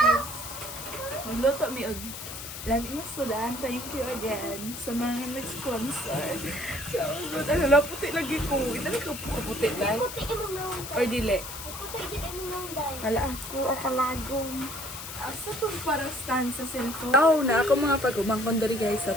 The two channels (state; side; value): noise; left; hiss, 9 dB below the sound